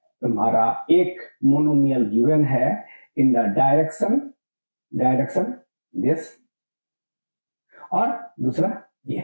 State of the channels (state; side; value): inverted; both; correlation -1.00